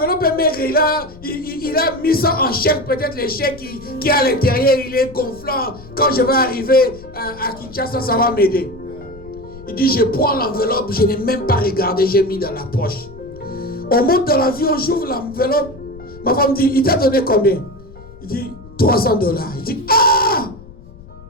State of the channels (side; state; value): left; noise; rumble, 19 dB below the sound